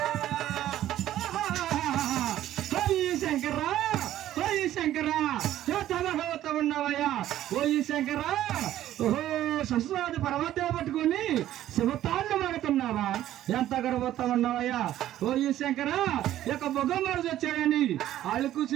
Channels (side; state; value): left; quieter; 12.9 dB